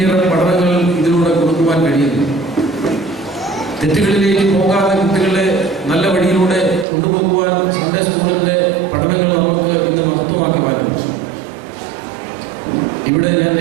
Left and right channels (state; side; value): drops out; left; at 6.9 s